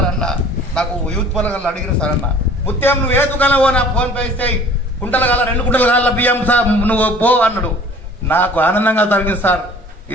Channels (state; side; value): normal; both; correlation 0.49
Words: అన్న, నాకు యూత్ పొలగల్లో అడిగిన సార్ అన్న, ముత్యం నువ్వు ఏ దుకాణం నా ఫోన్ పే ఇస్తే 2 కుంటల కాళ్ళ బియ్యం సార్ నువ్వు పో అన్నాడు. నాకు ఆనందంగా జరిగింది సార్.